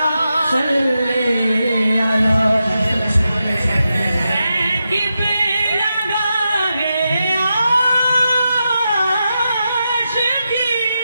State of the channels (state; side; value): inverted; both; correlation -0.88